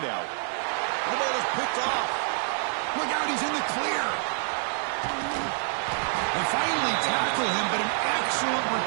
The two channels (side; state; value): left; silent; 60 dB below the other